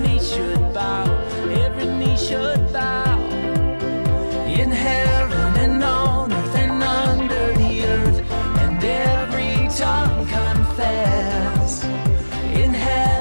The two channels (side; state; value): both; inverted; correlation -1.00